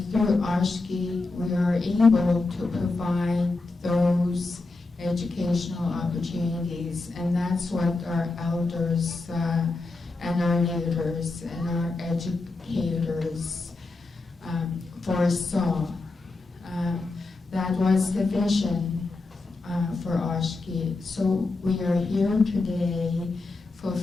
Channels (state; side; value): quieter; right; 3.4 dB